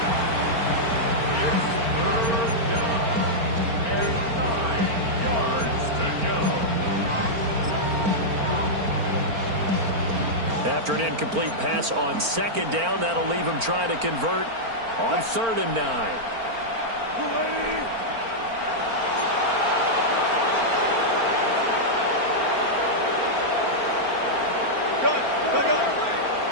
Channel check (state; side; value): late; left; 4.4 ms